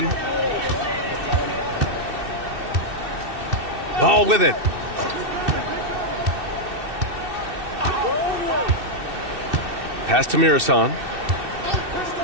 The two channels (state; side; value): late; left; 2.7 ms